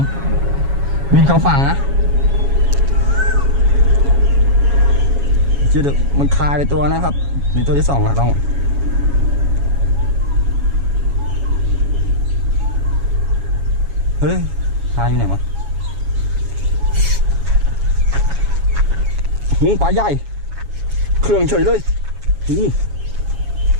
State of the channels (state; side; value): late; left; 7.2 ms